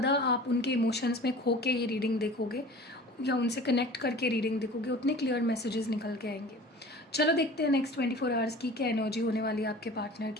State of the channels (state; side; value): normal; both; correlation 0.42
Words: आप उनके इमोशंस में खो के ये रीडिंग देखोगे या उनसे कनेक्ट करके रीडिंग देखोगे, उतने क्लियर मैसेजेस निकल के आएंगे। चलो देखते हैं नेक्स्ट 24 आवर्स की क्या एनर्जी होने वाली है आपके पार्टनर